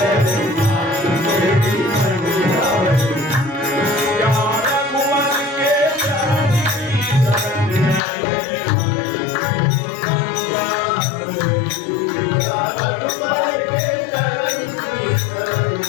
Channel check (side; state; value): right; drops out; at 8.0 s